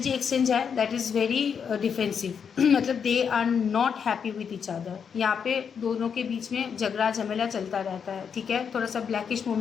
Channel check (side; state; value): right; quieter; 6.9 dB